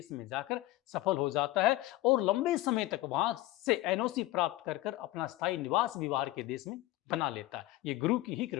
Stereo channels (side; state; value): right; quieter; 17.1 dB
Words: में जाकर सफल हो जाता है और लंबे समय तक वहां से एनओसी प्राप्त कर अपना स्थायी निवास भी बाहर के देश में बना लेता है। ये गुरु की ही